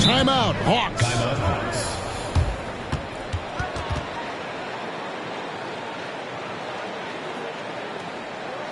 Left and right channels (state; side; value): identical; both; correlation 1.00